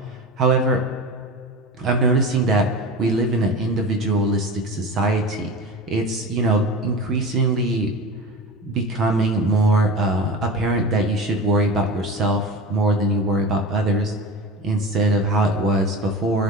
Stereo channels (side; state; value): both; normal; correlation 0.30